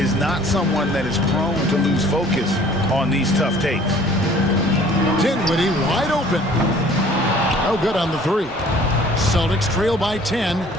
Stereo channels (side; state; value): both; normal; correlation 0.53